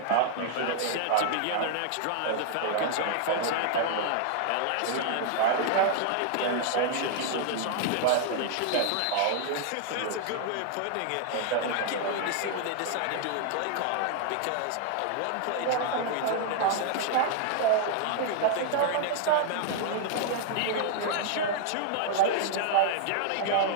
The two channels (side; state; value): both; different; correlation 0.00